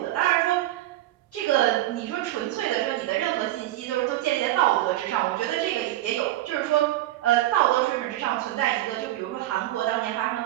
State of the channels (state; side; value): quieter; left; 15.2 dB